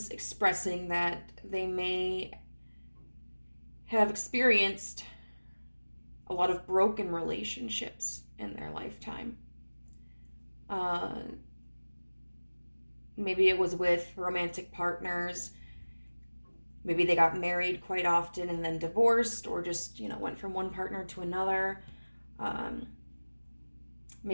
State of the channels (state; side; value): inverted; both; correlation -1.00